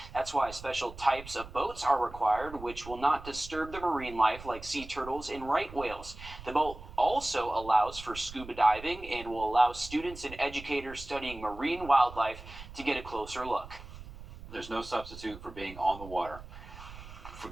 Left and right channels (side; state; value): right; noise; rumble, 15 dB below the sound